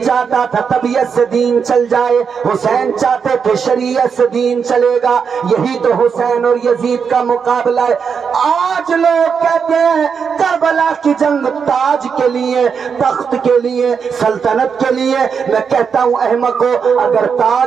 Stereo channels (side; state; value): left; quieter; 6.3 dB